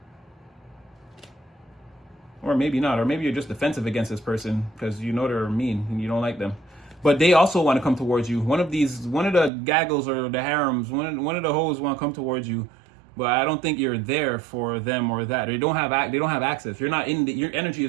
Or maybe not, or maybe you're just defensive against this person because you know they're mean and you don't like them. But they also want to come towards you. One of the gaggles or the harems, one of the hoes want to come towards you, but I don't think you're there for them or that. They don't have access. You're not in your energy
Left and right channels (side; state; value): left; drops out; at 9.5 s